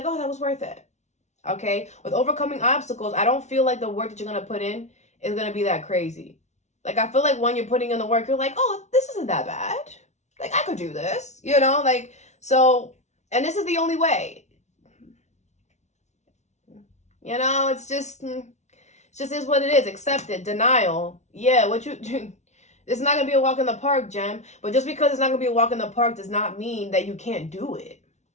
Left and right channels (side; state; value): right; late; 0.32 ms